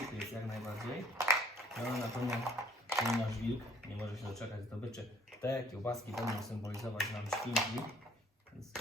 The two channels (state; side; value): normal; both; correlation 0.58